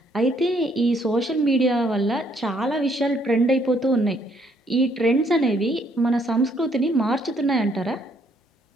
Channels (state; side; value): normal; both; correlation 0.68